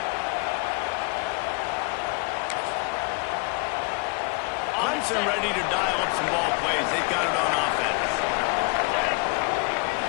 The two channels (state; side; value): quieter; right; 30.8 dB